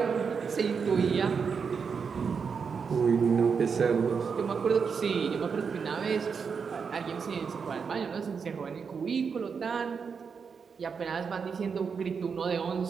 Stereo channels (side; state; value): left; quieter; 5.9 dB